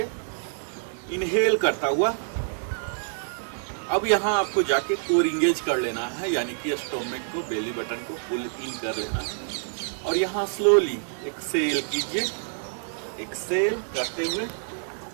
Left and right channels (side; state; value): left; silent; digital silence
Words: इनहेल करता हुआ अब यहाँ आपको जाके कोर इंगेज कर लेना है, यानी कि स्टोमक को, बेली बटन को पुल इन कर लेना है। और यहाँ स्लोली एक्सेल कीजिए। एक्सेल करते हुए